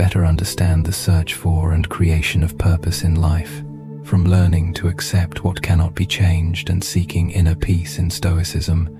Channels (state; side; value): identical; both; correlation 1.00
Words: understand the search for and creation of purpose in life. From learning to accept what cannot be changed and seeking inner peace in Stoicism,